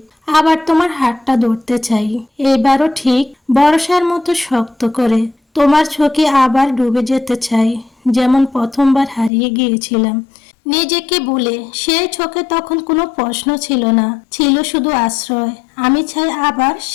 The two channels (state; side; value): drops out; right; at 9.3 s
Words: আবার তোমার হাতটা ধরতে চাই, এবারও ঠিক বর্ষার মতো শক্ত করে। তোমার চোখে আবার ডুবে যেতে চাই, যেমন প্রথমবার হারিয়ে গিয়েছিলাম নিজেকে ভুলে। সেই চোখে তখন কোনো প্রশ্ন ছিল না, ছিল শুধু আশ্রয়। আমি চাই আবার